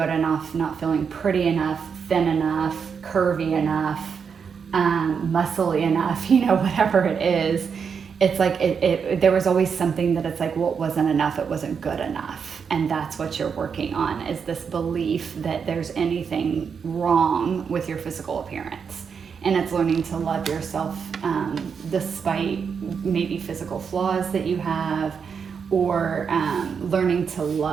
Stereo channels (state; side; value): quieter; left; 6.4 dB